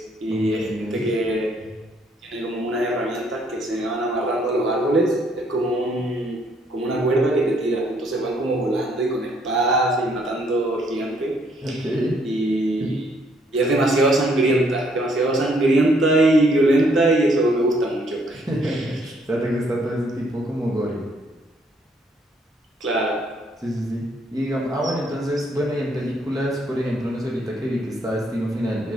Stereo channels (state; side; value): normal; both; correlation 0.68